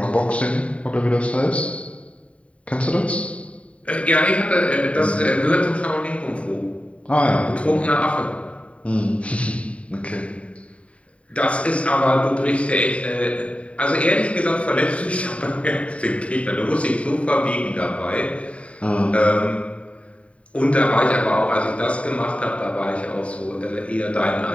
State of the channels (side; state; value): right; late; 0.064 ms